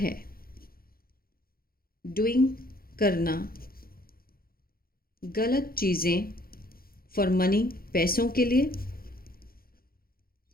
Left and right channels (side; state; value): right; late; 0.43 ms